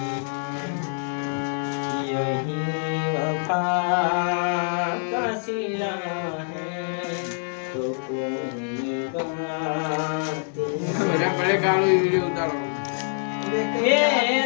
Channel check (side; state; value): right; silent; 62 dB below the other